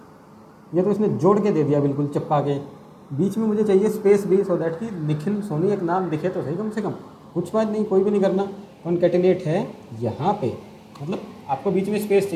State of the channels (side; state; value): both; identical; correlation 1.00